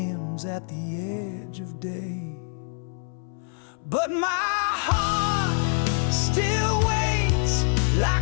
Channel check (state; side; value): silent; right; 61 dB below the other